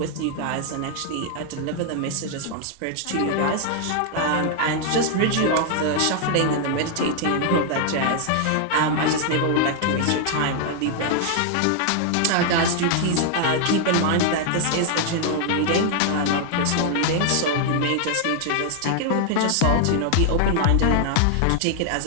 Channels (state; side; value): different; both; correlation 0.00